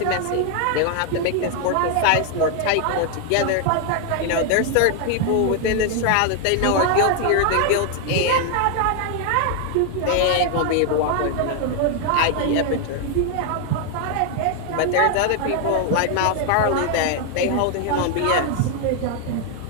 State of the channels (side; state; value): both; different; correlation 0.00